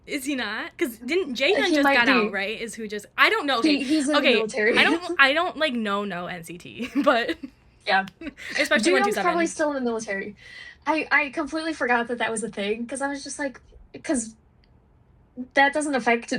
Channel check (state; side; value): identical; both; correlation 1.00